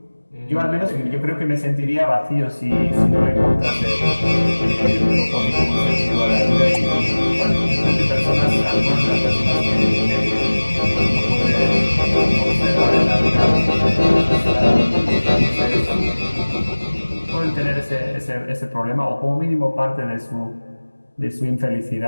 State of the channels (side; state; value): both; inverted; correlation -1.00